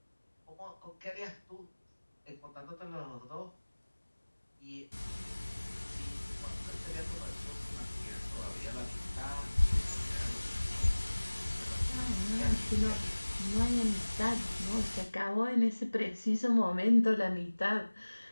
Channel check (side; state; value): both; inverted; correlation -1.00